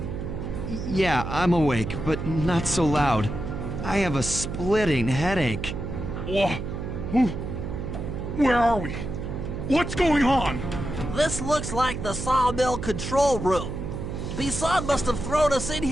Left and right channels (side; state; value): right; noise; hum, 5 dB below the sound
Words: Yeah, I'm awake, but not so loud. I have a splitting headache. Where are we? What's going on? This looks like the sawmill control room. Bisson must have thrown us in